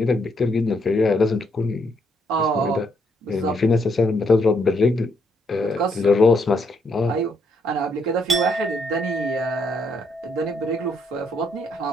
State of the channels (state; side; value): normal; both; correlation 0.74